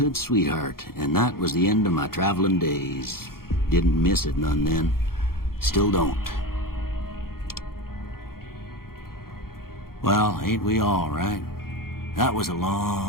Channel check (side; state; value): right; late; 0.93 ms